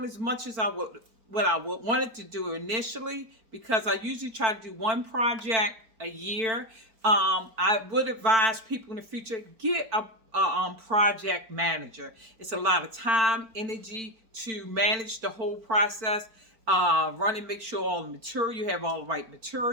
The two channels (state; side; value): late; left; 4.5 ms